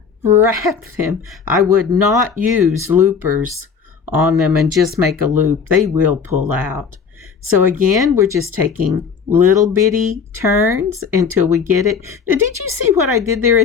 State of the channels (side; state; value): right; quieter; 5.9 dB